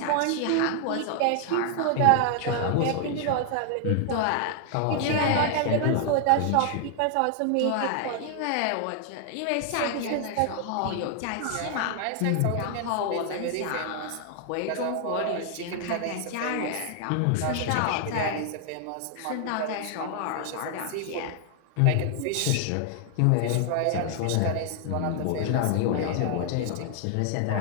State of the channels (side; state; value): both; different; correlation 0.00